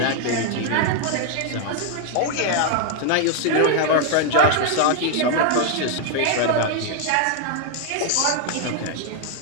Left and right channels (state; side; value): different; both; correlation 0.00